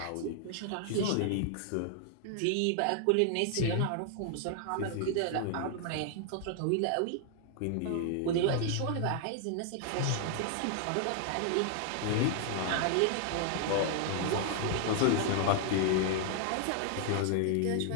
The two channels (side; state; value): both; different; correlation 0.00